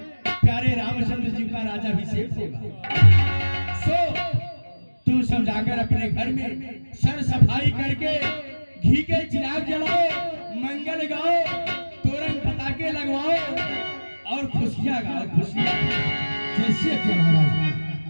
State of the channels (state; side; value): inverted; both; correlation -1.00